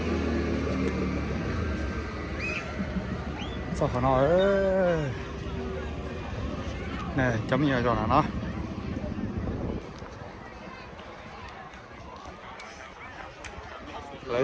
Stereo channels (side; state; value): both; identical; correlation 1.00